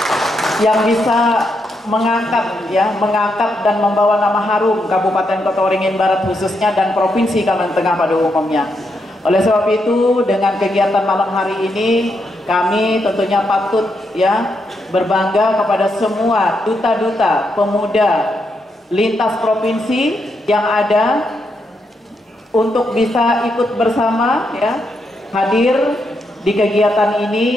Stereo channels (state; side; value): normal; both; correlation 0.81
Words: yang bisa mengangkat dan membawa nama harum Kabupaten Kota Waringin Barat khususnya dan Provinsi Kalimantan Tengah pada umumnya. Oleh sebab itu dengan kegiatan malam hari ini kami tentunya patut ya berbangga kepada semua duta-duta pemuda lintas provinsi yang ada untuk bisa ikut bersama ya hadir di kegiatan ini,